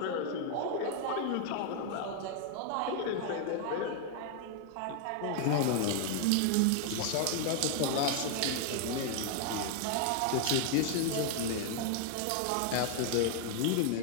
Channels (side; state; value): both; different; correlation 0.00